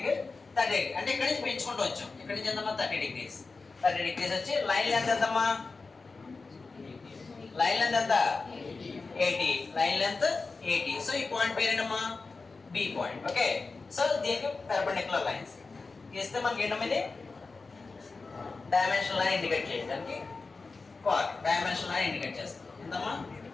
30 degrees అంటే ఇక్కడ నుంచి పెంచుకుంటూ వచ్చాం. ఇక్కడ నుంచి ఎంతమ్మా 30 degrees. 30 degrees వచ్చి లైన్ లెంత్ ఎంతమ్మా, లైన్ లెంత్ ఎంత 80, లైన్ లెంత్ 80. సో ఈ పాయింట్ పేరేనమ్మా బి పాయింట్. ఓకే, సో దీనికి పెర్పెండిక్యులర్ లైన్స్ గీస్తే మనకి ఏంటమ్మా ఇది డైమెన్షన్ లైన్ ఇండికేట్ చేయడానికి డైమెన్షన్ లైన్ ఇండికేట్ చేస్తాం. ఎంతమ్మా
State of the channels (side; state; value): right; quieter; 4.0 dB